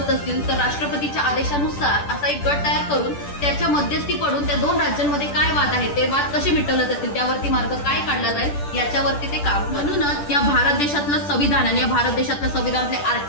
असतील तर राष्ट्रपतीच्या आदेशानुसार असा एक गट तयार करून त्याच्या मध्यस्थी पडून त्या दोन राज्यांमध्ये काय वाद आहेत ते वाद कसे मिटवले जातील, त्यावरती मार्ग काय काढला जाईल याच्यावरती ते काम. म्हणूनच या भारत देशातलं संविधान आणि या भारत देशातल्या संविधानातले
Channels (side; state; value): right; late; 10 ms